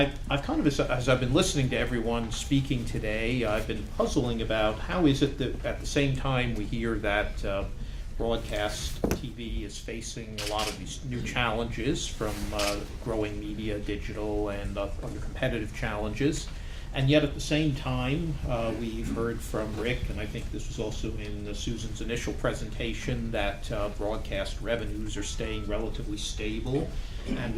kind of, as I've been listening to everyone speaking today, I've been puzzling about how is it that at the same time we hear that broadcast TV is facing a lot of these new challenges from growing media, digital, and other competitive challenges. And yet at the same time, we've heard from Rick, and I think this was also in Susan's initial presentation, that broadcast revenues are staying relatively stable. And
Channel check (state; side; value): identical; both; correlation 1.00